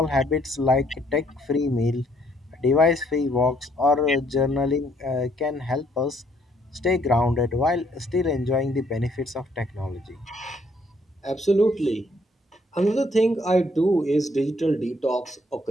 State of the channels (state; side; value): normal; both; correlation 0.67